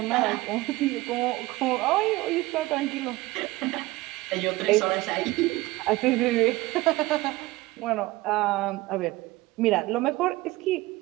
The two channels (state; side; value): quieter; left; 19.5 dB